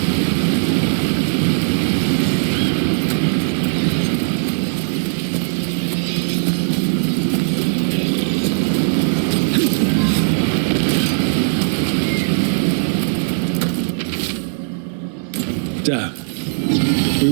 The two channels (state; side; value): silent; left; 67 dB below the other